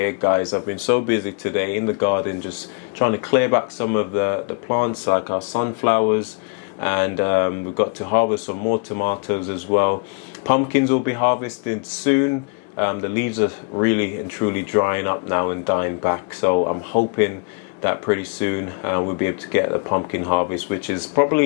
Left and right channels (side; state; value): right; quieter; 33.9 dB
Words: guys. I've been so busy today in the garden, just trying to clear back some of the plants, like our sunflowers, and we've got to harvest some more tomatoes as well. Pumpkins will be harvested soon. The leaves are really and truly drying up now and dying back, so I'm hoping that pretty soon we'll be able to get a pumpkin harvest, which is